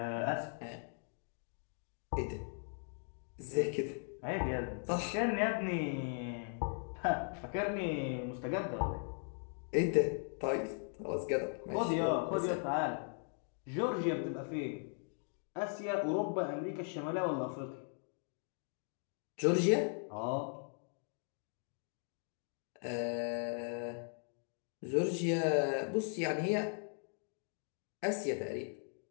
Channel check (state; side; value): silent; right; 52 dB below the other